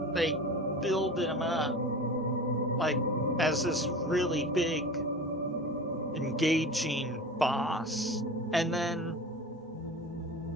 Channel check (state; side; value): normal; both; correlation 0.34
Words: they build him up like as this really big, engaging boss, and then